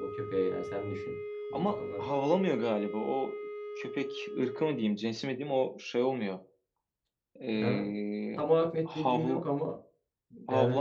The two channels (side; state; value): both; identical; correlation 1.00